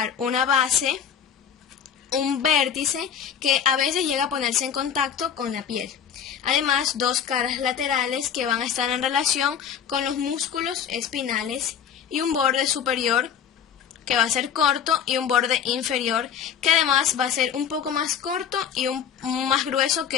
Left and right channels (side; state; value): right; quieter; 8.2 dB